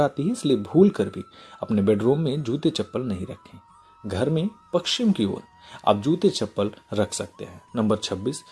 है, इसलिए भूल कर भी अपने बेडरूम में जूते चप्पल नहीं रखें। घर में पश्चिम की ओर आप जूते चप्पल रख सकते हैं। नंबर 26,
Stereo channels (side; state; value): both; identical; correlation 1.00